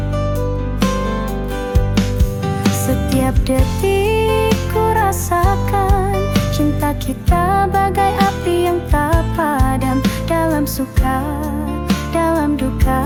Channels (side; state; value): both; identical; correlation 1.00